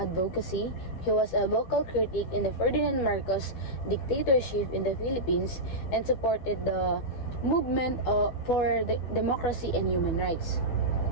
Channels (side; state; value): right; late; 12 ms